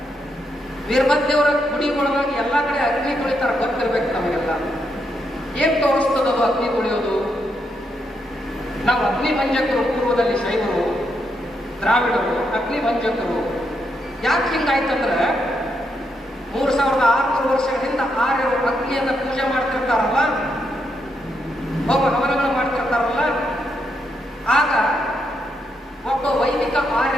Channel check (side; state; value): both; normal; correlation 0.80